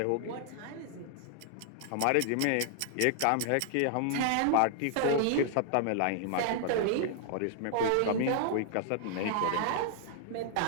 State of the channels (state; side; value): different; both; correlation 0.00